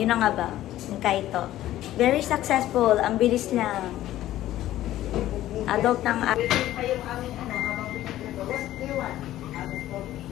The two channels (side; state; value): right; quieter; 14.0 dB